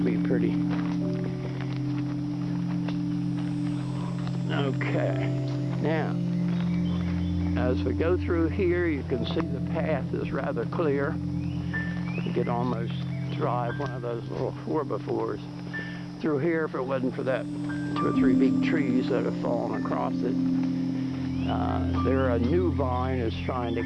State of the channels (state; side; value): identical; both; correlation 1.00